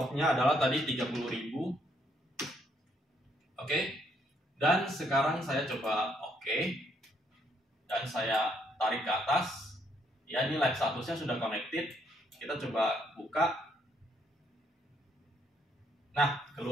adalah tadi 30.000. Oke. Dan sekarang saya coba oke. Dan saya tarik ke atas. Ya, ini live statusnya sudah connected. Kita coba buka. Nah,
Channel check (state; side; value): normal; both; correlation 0.71